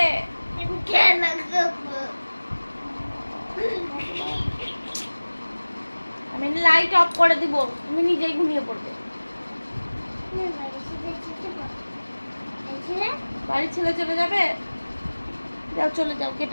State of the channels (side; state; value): both; inverted; correlation -1.00